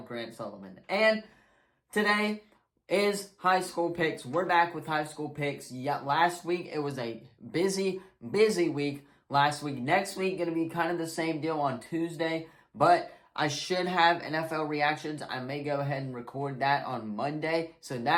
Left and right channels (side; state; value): both; identical; correlation 1.00